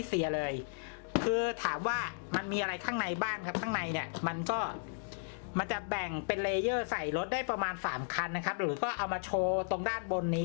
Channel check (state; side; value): silent; right; digital silence